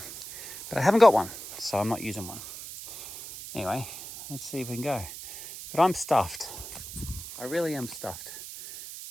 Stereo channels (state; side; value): noise; right; hiss, 11 dB below the sound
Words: But I haven't got one, so I'm not using one. Anyway, let's see if we can go. But I'm stuffed. I really am stuffed.